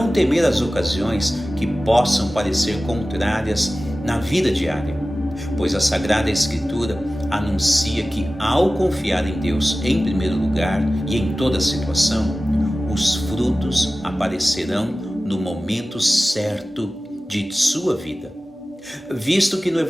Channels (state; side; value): normal; both; correlation 0.96